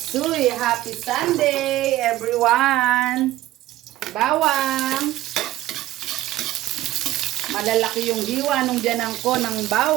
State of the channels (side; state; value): left; quieter; 15.5 dB